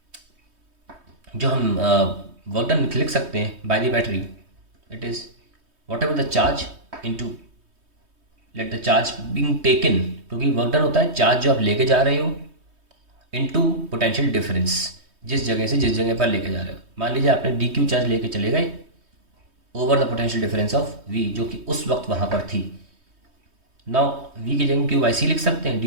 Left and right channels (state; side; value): late; left; 3.2 ms